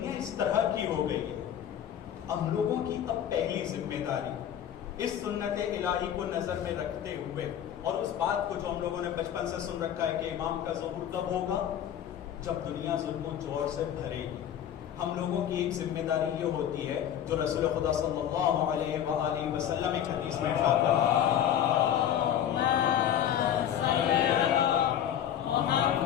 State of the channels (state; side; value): quieter; right; 10.1 dB